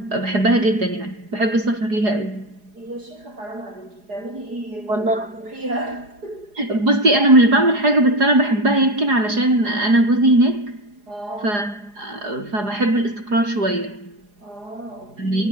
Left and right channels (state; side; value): late; left; 4.8 ms